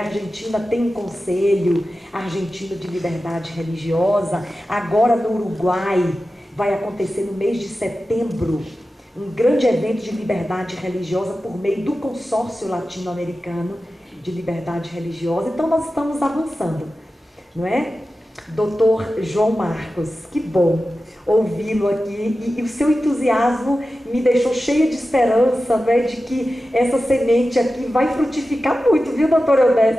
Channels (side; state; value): both; normal; correlation 0.93